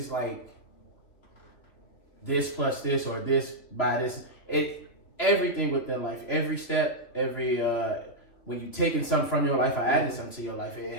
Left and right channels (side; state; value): right; late; 2.8 ms